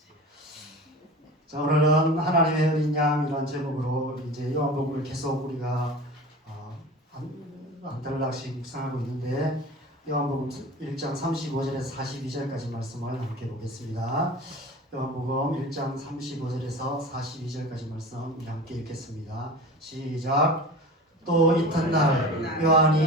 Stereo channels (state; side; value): normal; both; correlation 0.36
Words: 자, 오늘은 하나님의 어린 양이라는 제목으로 이제 요한복음을 계속 우리가 한 달락씩 묵상하고 있는데, 요한복음 1장 35절에서 42절까지 말씀을 함께 보겠습니다. 요한복음 1장 35절에서 42절까지 말씀 우리 함께 읽겠습니다. 시작. 또 이튿날